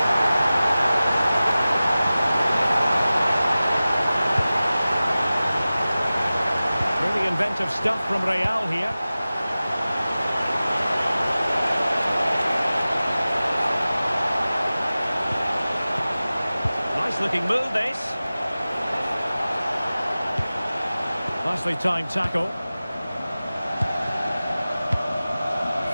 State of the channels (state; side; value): inverted; both; correlation -0.97